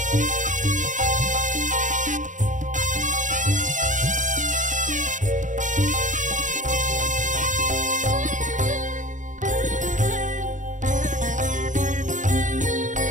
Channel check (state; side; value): late; left; 0.37 ms